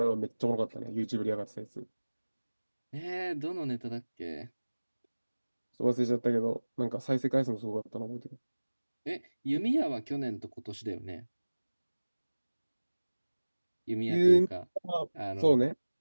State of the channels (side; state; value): both; inverted; correlation -1.00